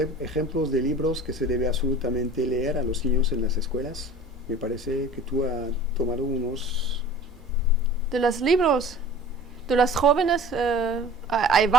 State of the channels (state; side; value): normal; both; correlation 0.42